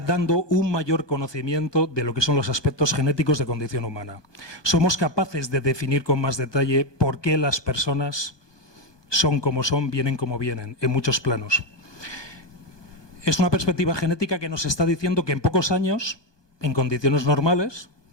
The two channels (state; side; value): late; right; 1.2 ms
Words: un mayor conocimiento de lo que son los aspectos genéticos de condición humana. Somos capaces de definir con más detalle por qué las personas son como son, vienen como vienen, en muchos planos. Es una perspectiva genética que nos está diciendo que en pocos años, en condiciones normales,